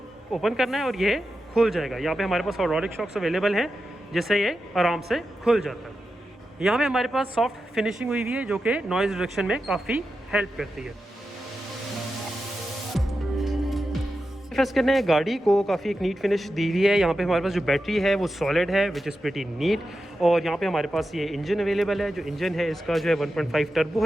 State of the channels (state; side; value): normal; both; correlation 0.90